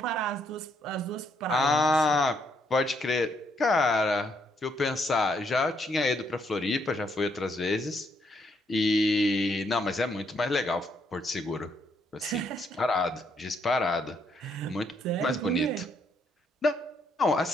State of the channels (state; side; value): normal; both; correlation 0.73